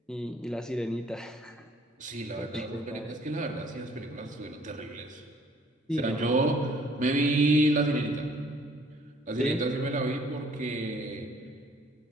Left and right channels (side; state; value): both; normal; correlation 0.59